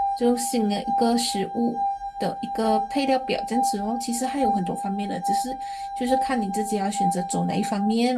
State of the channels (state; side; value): identical; both; correlation 1.00